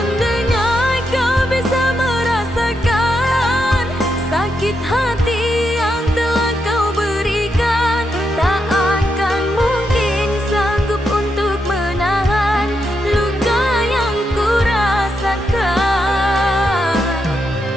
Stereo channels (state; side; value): normal; both; correlation 0.83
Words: kau bisa merasakan sakit hati yang telah kau berikan, tak akan mungkin sanggup untuk menahan luka yang ku rasakan.